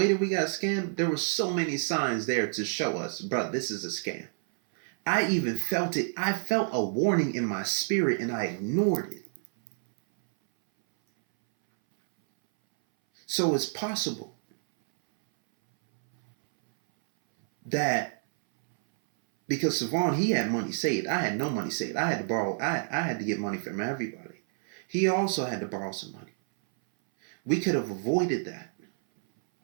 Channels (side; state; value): left; silent; 58 dB below the other